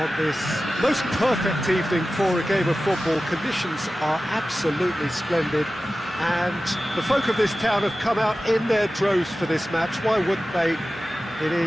this most perfect evening for a game of football. Conditions are absolutely splendid and the folk of this town have come out in their droves for this match. Why wouldn't they? It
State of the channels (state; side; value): normal; both; correlation 0.95